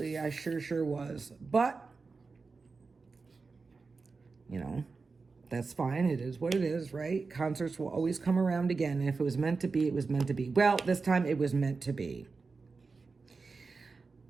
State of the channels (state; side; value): quieter; left; 4.3 dB